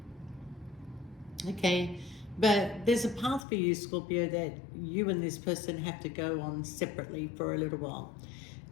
Okay, but there's a path for you, Scorpio, that you and this person have to go on separately for a little while.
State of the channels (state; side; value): drops out; right; at 3.5 s